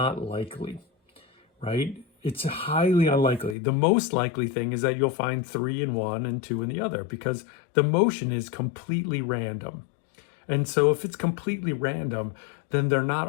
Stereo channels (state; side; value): drops out; right; at 3.6 s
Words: likely, right? It's highly unlikely. The most likely thing is that you'll find 3 in one and 2 in the other, because the motion is completely random. And so if it's completely random, then they're not